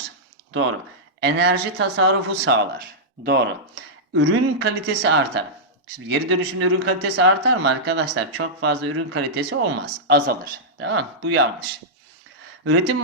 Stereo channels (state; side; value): normal; both; correlation -0.10